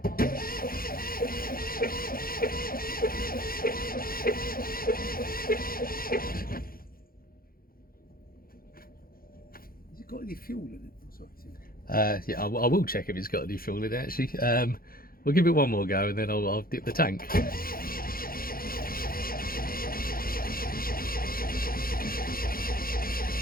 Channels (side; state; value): right; late; 0.42 ms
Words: Has it got any fuel in it? Oh, sorry. Yeah, I will check if it's got any fuel in it, actually. We'll give it one more go and then I'll dip the tank.